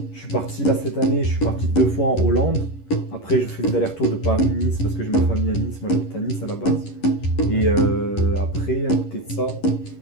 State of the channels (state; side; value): late; right; 11 ms